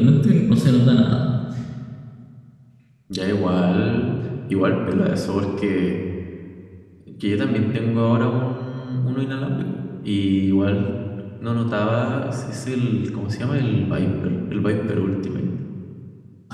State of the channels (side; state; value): both; identical; correlation 1.00